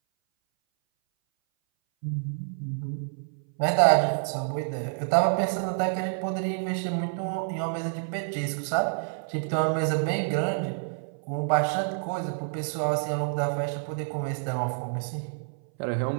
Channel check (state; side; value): silent; left; 59 dB below the other